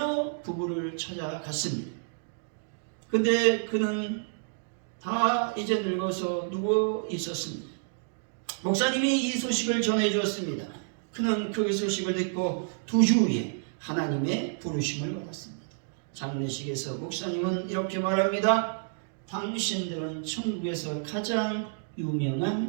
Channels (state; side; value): silent; left; digital silence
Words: 부부를 찾아갔습니다. 근데 그는 다 이제 늙어서 누워 있었습니다. 목사님이 이 소식을 전해주었습니다. 그는 그 소식을 듣고 2주 후에 하나님의 부르심을 받았습니다. 장례식에서 목사님은 이렇게 말합니다. 당신들은 천국에서 가장